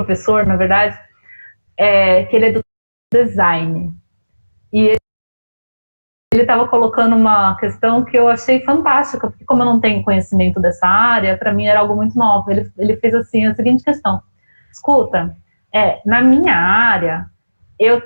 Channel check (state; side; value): inverted; both; correlation -1.00